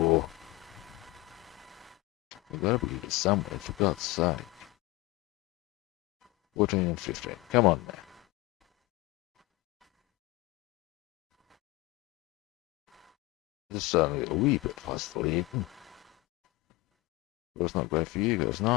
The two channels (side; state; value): right; quieter; 21.4 dB